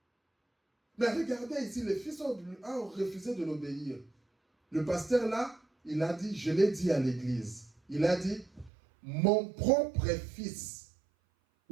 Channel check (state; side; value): drops out; left; at 8.7 s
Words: Mais regardez ici, le fils a refusé de l'obéir. Le pasteur là, il a dit, je l'ai dit à l'église, il a dit, mon propre fils,